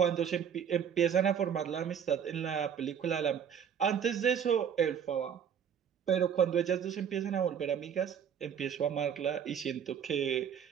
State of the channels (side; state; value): left; quieter; 8.1 dB